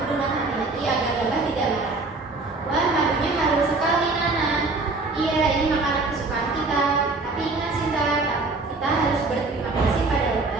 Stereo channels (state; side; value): quieter; left; 3.5 dB